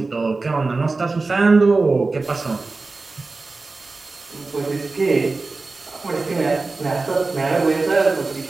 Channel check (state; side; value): quieter; left; 3.7 dB